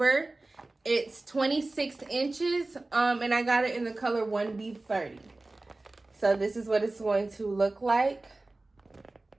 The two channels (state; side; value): quieter; left; 3.0 dB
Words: It's 26 inches, and I got it in the color 1B30. So this is what it's going to look like